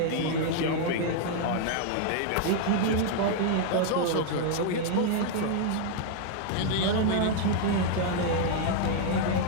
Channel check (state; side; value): different; both; correlation 0.00